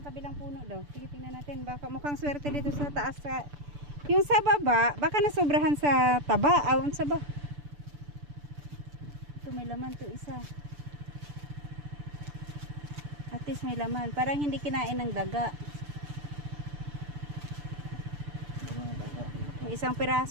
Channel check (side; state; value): left; late; 6.9 ms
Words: kabilang puno daw. Sige, tingnan natin. Baka mukhang swerte dito sa taas. Yung sa baba, baka nasobrahan sa taba. Awan sa ba? Ito, may laman to isa. At least may laman. Parang hindi kinain ng daga. Walang daga dito. May isang